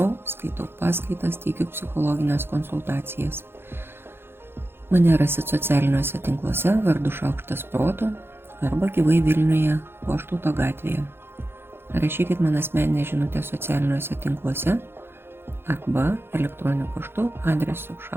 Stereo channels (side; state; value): left; late; 0.11 ms